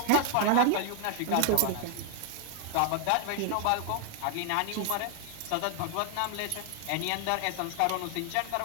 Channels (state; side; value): different; both; correlation 0.00